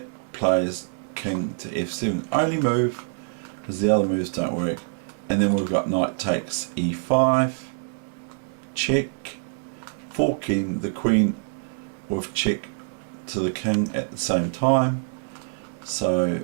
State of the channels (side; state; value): left; silent; 62 dB below the other